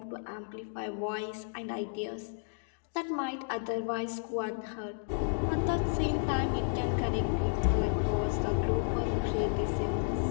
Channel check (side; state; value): right; silent; digital silence